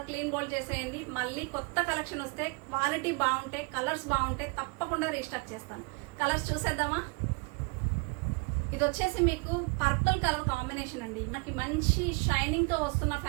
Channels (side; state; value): left; quieter; 31.2 dB